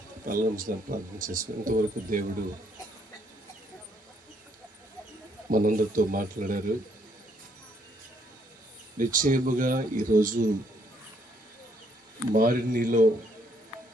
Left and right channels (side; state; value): both; normal; correlation 0.69